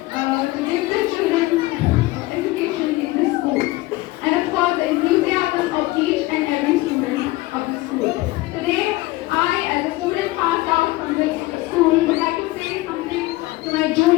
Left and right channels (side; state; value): right; quieter; 19.4 dB